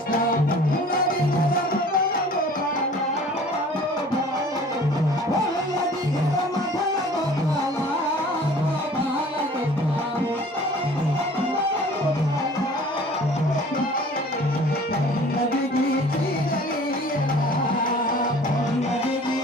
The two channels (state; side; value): normal; both; correlation 0.48